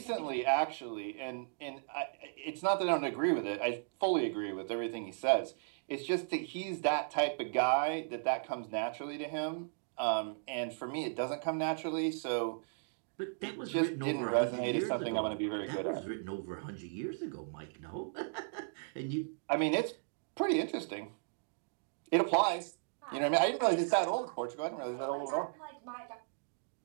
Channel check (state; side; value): silent; left; digital silence